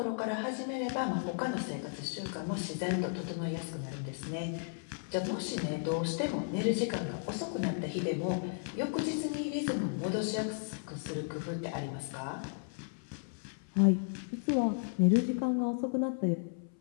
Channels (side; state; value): right; silent; 55 dB below the other